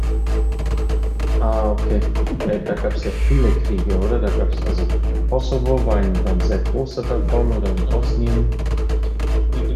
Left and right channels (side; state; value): both; identical; correlation 1.00